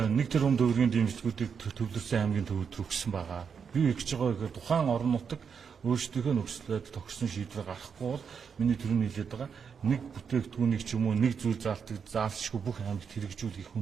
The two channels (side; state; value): left; quieter; 6.5 dB